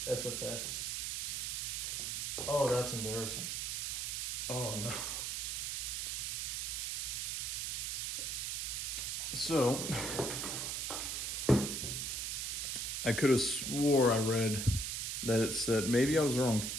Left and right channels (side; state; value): right; noise; hiss, 1 dB below the sound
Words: SFX. Oh, that's embarrassing. Oh no. So, I could have swore I read that it said, maybe I was wrong,